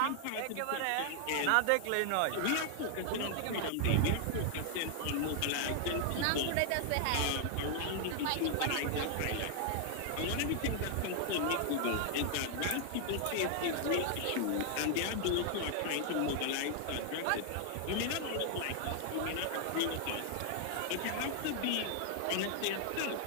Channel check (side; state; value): both; different; correlation 0.00